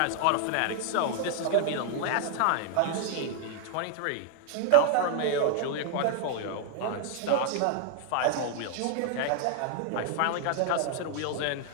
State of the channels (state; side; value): different; both; correlation 0.00